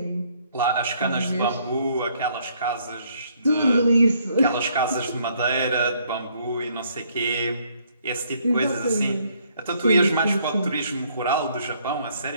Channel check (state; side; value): inverted; both; correlation -0.67